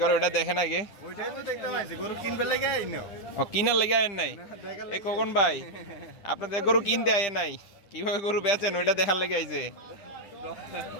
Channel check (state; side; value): late; right; 10 ms